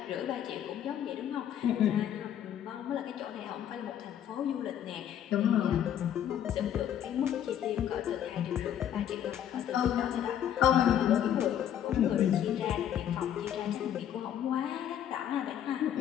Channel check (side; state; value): right; quieter; 10.1 dB